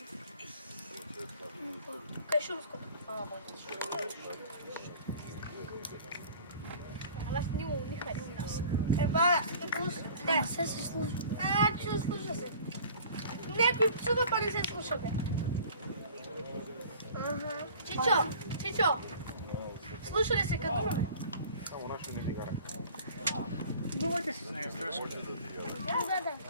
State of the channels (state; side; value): inverted; both; correlation -0.46